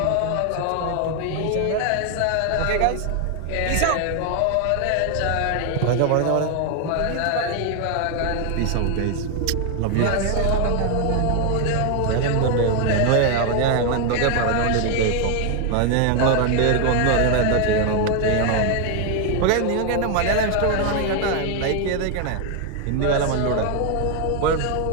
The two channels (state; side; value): different; both; correlation 0.01